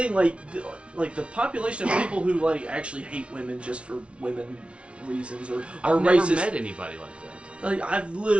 like the population of people who like actually hate women just for women reasons or are I've racist. never met anybody like that. Like I've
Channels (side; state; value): left; late; 0.060 ms